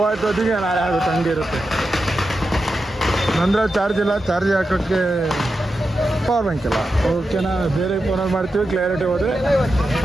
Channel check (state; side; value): normal; both; correlation 0.89